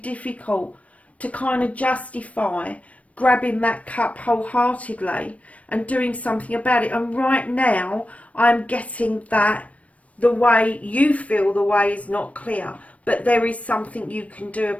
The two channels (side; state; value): right; late; 0.066 ms